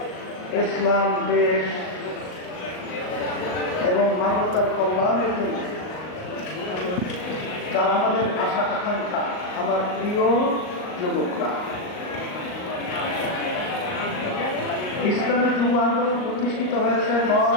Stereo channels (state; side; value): late; right; 38 ms